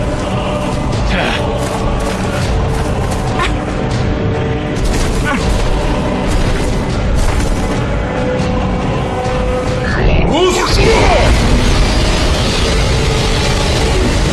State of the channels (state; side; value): identical; both; correlation 1.00